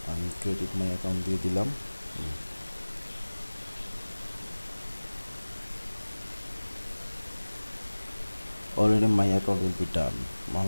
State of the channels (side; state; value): both; inverted; correlation -1.00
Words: আমি ক্রেডিট মাই অ্যাকাউন্ট দিয়ে দিলাম। Already my account will be done.